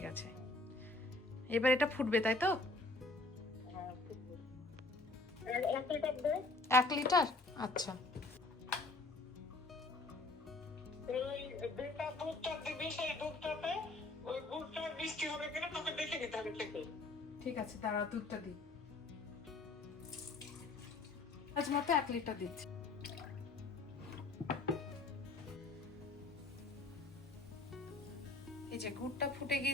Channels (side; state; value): right; quieter; 3.2 dB